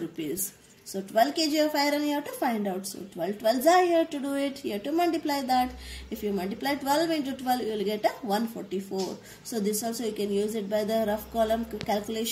rupees. So 12 kg of iron you have to find out. So 12 12s are here to do it. You have to multiply that. If you multiply 12 into 12, you will get a 144. So this also you can use it by the rough column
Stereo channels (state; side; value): identical; both; correlation 1.00